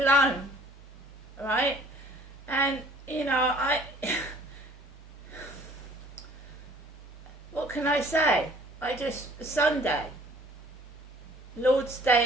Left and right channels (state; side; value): normal; both; correlation 0.55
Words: right? And, you know, what can I say? Sunday, Lord's